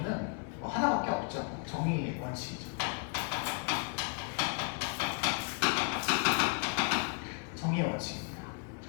하나밖에 없죠. 정의 원칙이죠. 정의 원칙입니다.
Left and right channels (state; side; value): quieter; right; 38.2 dB